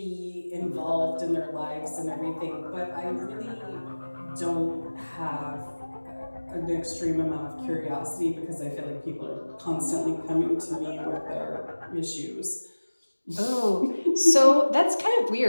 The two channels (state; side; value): inverted; both; correlation -1.00